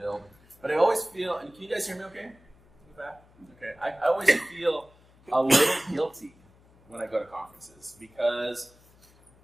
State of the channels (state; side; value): noise; left; hum, 28 dB below the sound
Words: But I always feel, and can you guys hear me okay? In the back? Okay. I always feel a little guilty when I go to conferences because